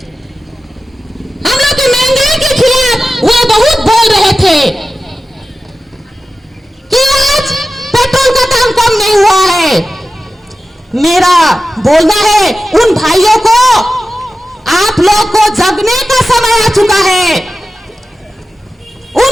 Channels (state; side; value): normal; both; correlation 0.94